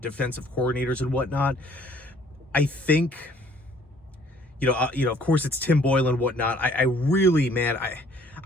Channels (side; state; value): both; normal; correlation 0.59